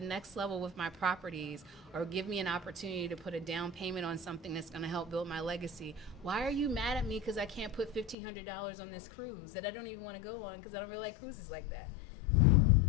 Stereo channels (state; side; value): drops out; right; at 8.2 s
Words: next level with my properties or give me an opportunity to put a down payment on something that's going to help build my legacy, why are you mad at me because I can't put $1,500 on this cruise that I don't even want to go on because I don't really like cruises like that?